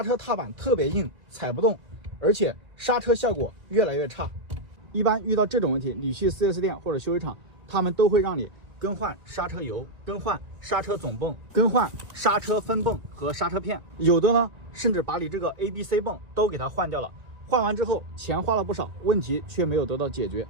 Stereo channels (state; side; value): late; left; 2.0 ms